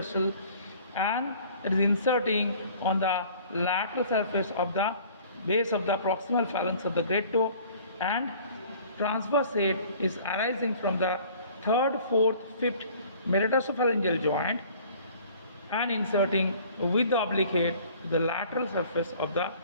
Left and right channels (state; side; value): inverted; both; correlation -0.51